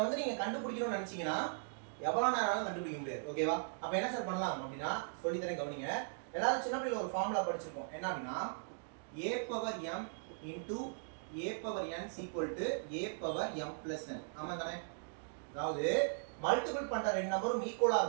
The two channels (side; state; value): left; silent; digital silence